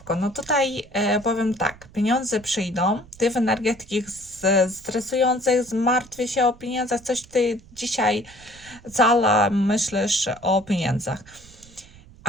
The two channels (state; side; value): noise; right; rumble, 23 dB below the sound